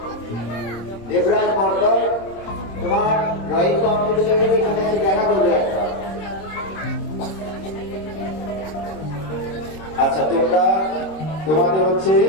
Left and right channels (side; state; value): right; late; 26 ms